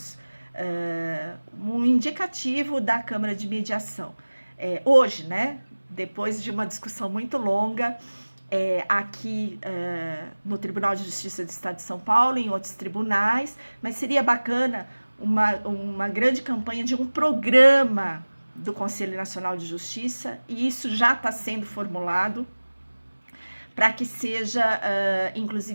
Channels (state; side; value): inverted; both; correlation -1.00